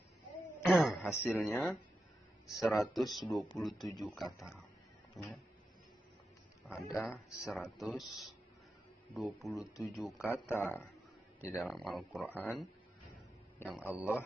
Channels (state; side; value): normal; both; correlation 0.89